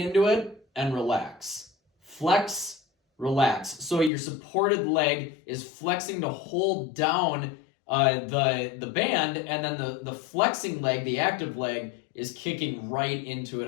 it and relax. Flex, relax. So your supported leg is flexing to hold down the band, and then the flexing leg, the active leg, is kicking right into it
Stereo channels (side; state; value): right; drops out; at 4.1 s